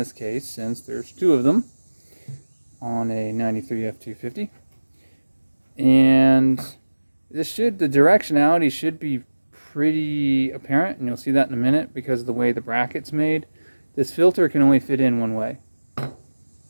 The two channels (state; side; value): inverted; both; correlation -1.00